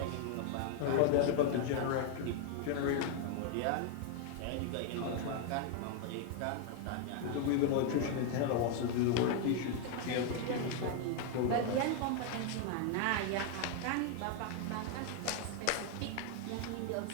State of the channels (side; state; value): both; different; correlation 0.00